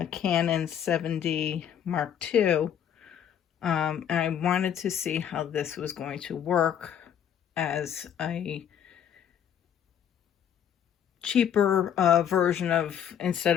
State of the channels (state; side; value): quieter; right; 9.1 dB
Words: Canon 7D Mark II. And I wanted to see how this was going to work as a cheaper version of,